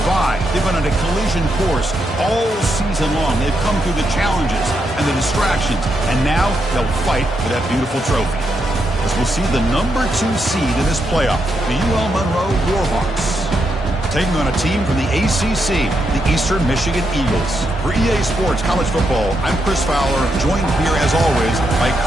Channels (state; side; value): normal; both; correlation 0.81